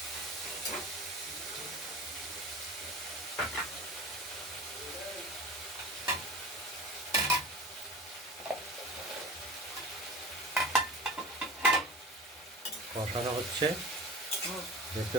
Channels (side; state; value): both; normal; correlation 0.35